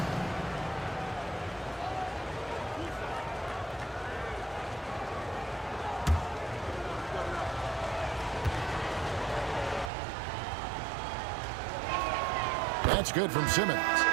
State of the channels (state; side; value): drops out; left; at 9.9 s